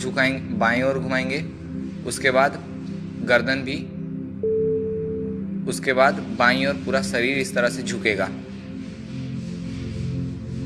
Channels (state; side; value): identical; both; correlation 1.00